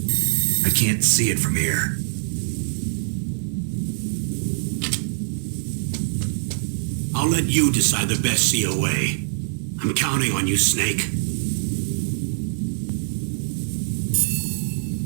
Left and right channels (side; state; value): left; silent; digital silence